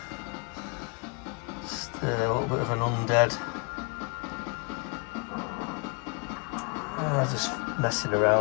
Just a little bit of an undead. Just messing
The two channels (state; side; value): quieter; right; 33.1 dB